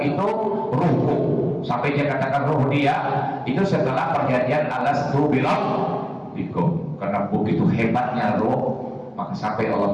itu ruhku. Sampai dia katakan ruh dia itu setelah perjanjian alastu bikum. Karena begitu hebatnya roh, maka sampai Allah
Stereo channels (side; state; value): both; identical; correlation 1.00